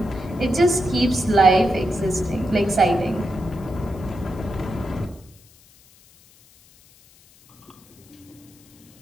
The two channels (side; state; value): left; noise; hiss, 28 dB below the sound